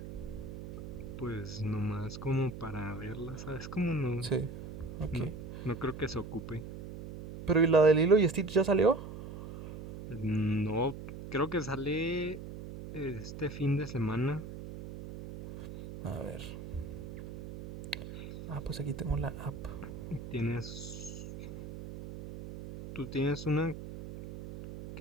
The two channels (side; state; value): right; noise; hum, 10 dB below the sound